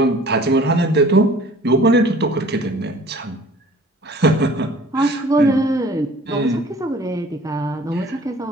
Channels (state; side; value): normal; both; correlation 0.49